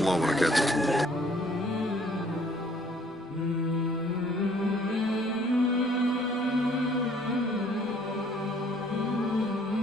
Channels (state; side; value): normal; both; correlation 0.60